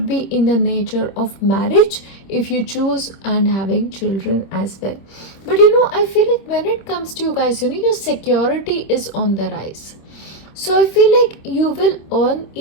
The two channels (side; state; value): right; late; 26 ms